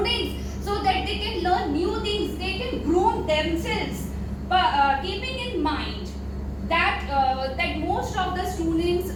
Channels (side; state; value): both; identical; correlation 1.00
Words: so that they can learn new things, they can groom themselves. But keeping in mind that most of the